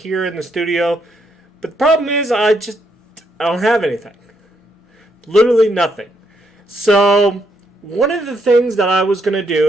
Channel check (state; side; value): normal; both; correlation 0.76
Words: in the studio. But the problem is I don't have anything. Literally nothing. So one of the things that I was going to